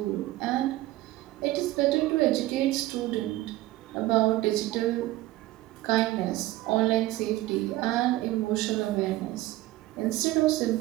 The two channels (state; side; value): quieter; left; 17.0 dB